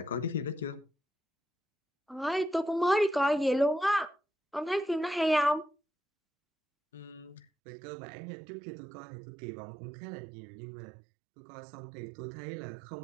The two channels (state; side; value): drops out; left; at 7.5 s